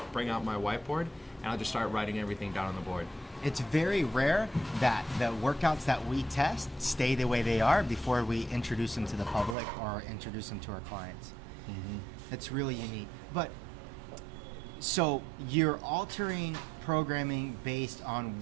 bring out my whiteboard, and I'll just start writing everything down on the board. It's very rare that the workouts that we test stay the way they are before we introduce them to the public or introduce them to our clients. It's really unique. But so you're altering programming based on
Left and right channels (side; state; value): left; drops out; at 9.6 s